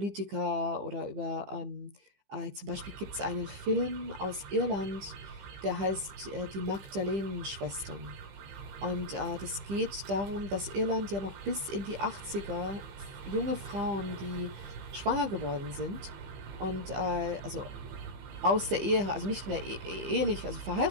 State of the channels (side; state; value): left; late; 15 ms